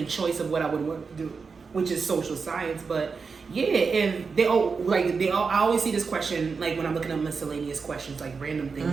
choice of what I would want to do, which is social science. But yeah, and I always see this question like when I'm looking at miscellaneous questions, like random things.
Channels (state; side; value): quieter; left; 5.0 dB